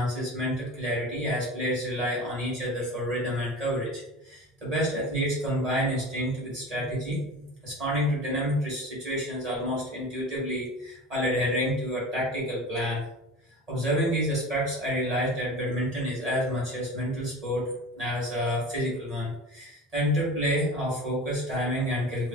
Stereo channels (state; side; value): normal; both; correlation 0.34